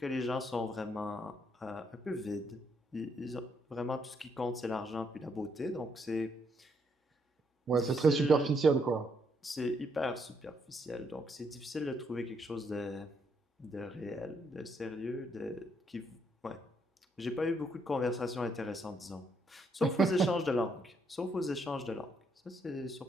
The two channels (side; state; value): both; normal; correlation 0.73